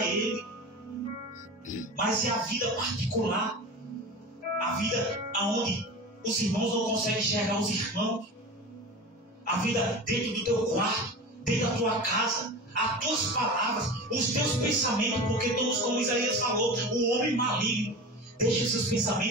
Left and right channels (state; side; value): normal; both; correlation 0.31